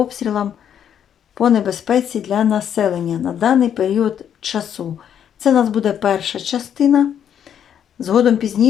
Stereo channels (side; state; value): right; quieter; 9.1 dB